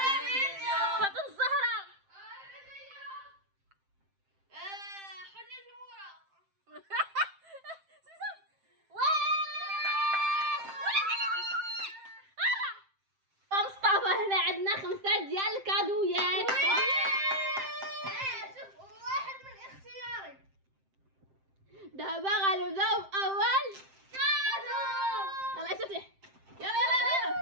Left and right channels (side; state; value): left; late; 7.6 ms